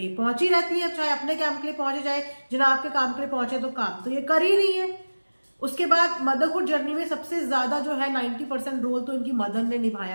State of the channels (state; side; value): inverted; both; correlation -1.00